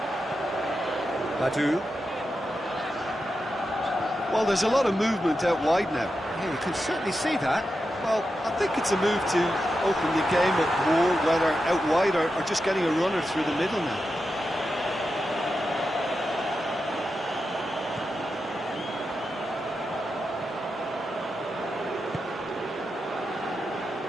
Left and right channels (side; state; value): both; normal; correlation 0.89